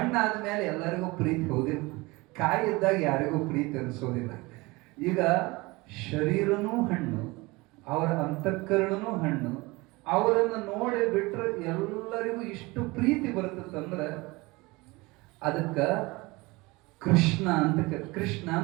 ಎಲ್ಲರಿಗೂ ಪ್ರೀತಿ ಹೋದಿಲ್ಲ. ಕಾಯಿ ಇದ್ದಾಗ ಯಾರಿಗೂ ಪ್ರೀತಿ ಅನಿಸೋದಿಲ್ಲ. ಈಗ ಶರೀರನೂ ಹಣ್ಣು, ಅವರ ಅಂತಃಕರಣನೂ ಹಣ್ಣು. ಅವರನ್ನು ನೋಡಿ ಬಿಟ್ರೆ ಎಲ್ಲರಿಗೂ ಇಷ್ಟು ಪ್ರೀತಿ ಬರ್ತದಂದ್ರೆ ಅದಕ್ಕ ಕೃಷ್ಣ ಅಂತ. ಕೃಷ್ಣ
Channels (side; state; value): left; quieter; 23.3 dB